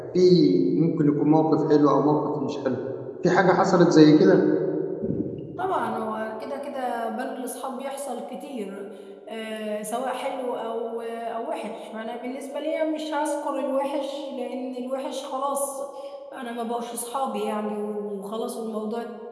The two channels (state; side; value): identical; both; correlation 1.00